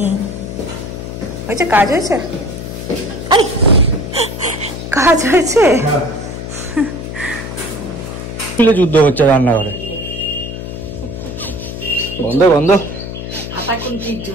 হয়েছে, কাজ হয়েছে, কাজ হয়েছে। যুদ্ধ হচ্ছে রান্নাঘরে, বন্ধ বন্ধ।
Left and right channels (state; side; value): noise; left; hum, 8 dB below the sound